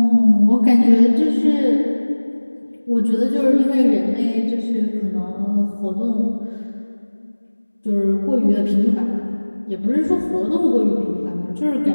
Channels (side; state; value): both; inverted; correlation -1.00